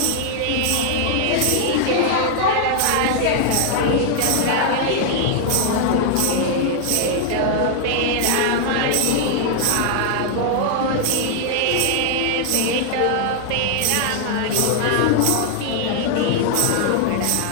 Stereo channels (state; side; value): different; both; correlation 0.00